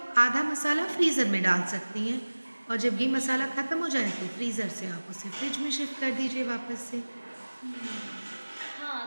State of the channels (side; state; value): both; inverted; correlation -1.00